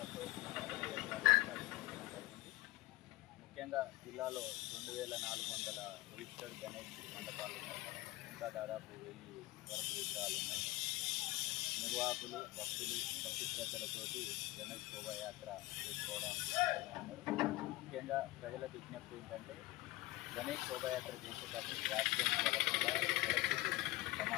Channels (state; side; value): quieter; right; 19.6 dB